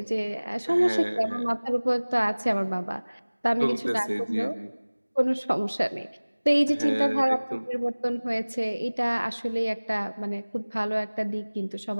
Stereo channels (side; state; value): both; inverted; correlation -1.00